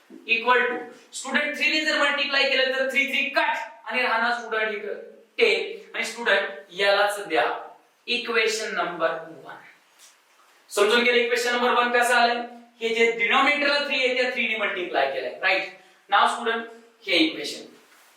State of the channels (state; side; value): identical; both; correlation 1.00